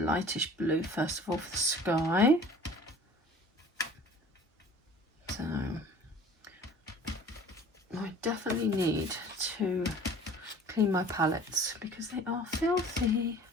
blue first of all for the sky. So I definitely need to clean my palettes because they are filthy.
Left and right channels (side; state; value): both; normal; correlation 0.47